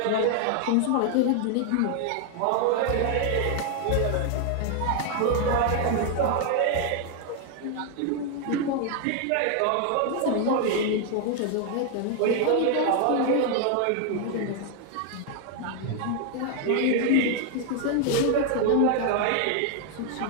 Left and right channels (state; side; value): different; both; correlation 0.00